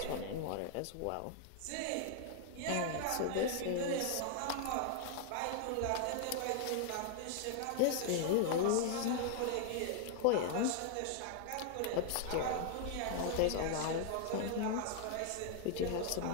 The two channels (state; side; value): different; both; correlation 0.00